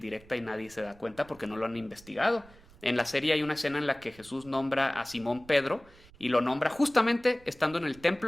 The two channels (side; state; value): right; noise; rumble, 24 dB below the sound